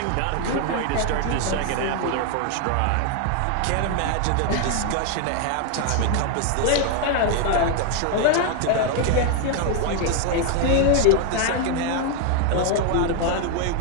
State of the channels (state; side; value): different; both; correlation 0.00